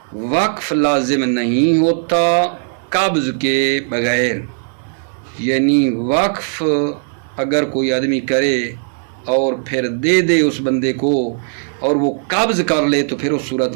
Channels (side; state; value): left; silent; 68 dB below the other